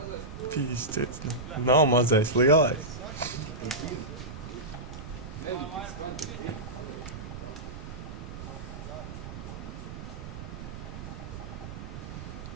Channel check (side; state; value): right; noise; rumble, 10 dB below the sound